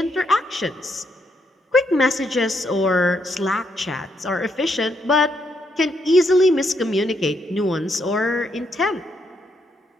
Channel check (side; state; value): both; normal; correlation 0.76